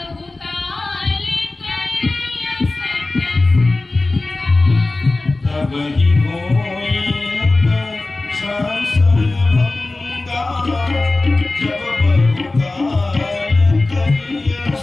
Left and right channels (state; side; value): quieter; right; 3.1 dB